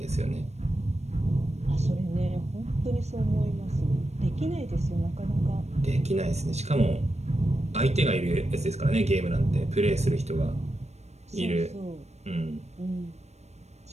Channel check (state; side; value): late; left; 0.32 ms